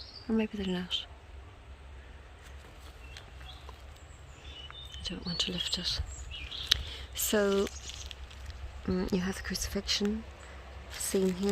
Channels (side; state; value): both; identical; correlation 1.00